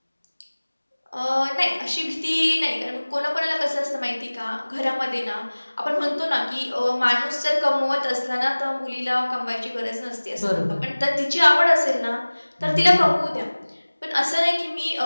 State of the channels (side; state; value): both; inverted; correlation -1.00